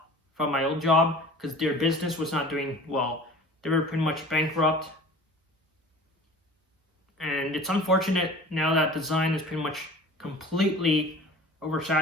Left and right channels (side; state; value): both; normal; correlation 0.43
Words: from my old job because their business was not doing well. They were pretty much bankrupt. And it's unfortunate now that design is pretty much completely